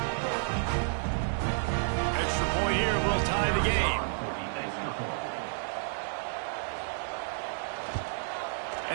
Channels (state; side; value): silent; left; digital silence